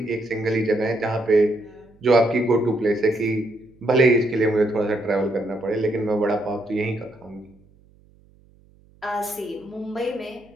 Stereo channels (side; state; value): right; noise; hum, 30 dB below the sound